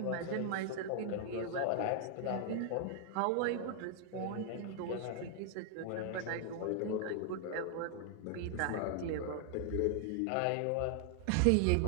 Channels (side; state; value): both; different; correlation 0.00